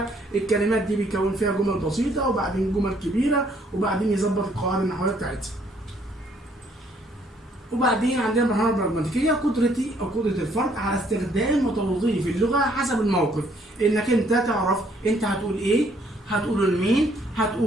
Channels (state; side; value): normal; both; correlation 0.65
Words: الكلمات دي بيكون فيها جمل بسيطة وبعدين جمل كبيرة وبعدين يظبط القواعد النحوية بتاعتها. وبعدين عندنا المرحلة البراجماتيكية، قدرتي أو قدرة الفرد على استخدام وتوظيف اللغة حسب الموقف. إنك أنت تعرف أنت هتقول إيه، هتقوله لمين،